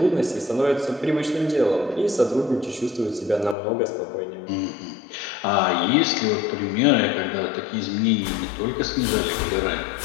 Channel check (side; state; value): right; drops out; at 3.6 s